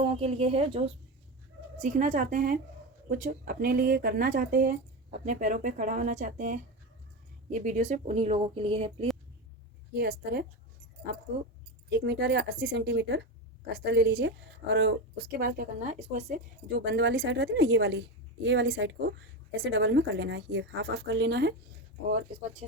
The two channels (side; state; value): both; normal; correlation 0.18